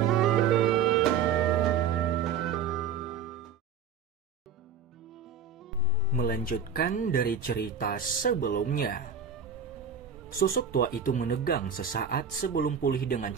Melanjutkan dari cerita sebelumnya. Sosok tua itu menegang sesaat sebelum pulih dengan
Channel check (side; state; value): left; quieter; 6.6 dB